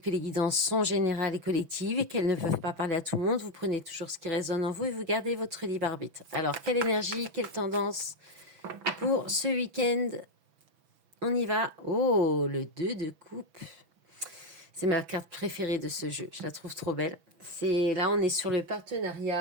les guidances sont générales et collectives et qu'elles ne peuvent pas parler à tout le monde. Vous prenez toujours ce qui résonne en vous et vous gardez votre libre arbitre. Alors, quelle énergie, quelle tendance pour ce week-end? On y va. Oh, le 2 de coupe. C'est ma carte préférée de ce jeu. Je la trouve trop belle. Là, on est sur le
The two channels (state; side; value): late; left; 6.0 ms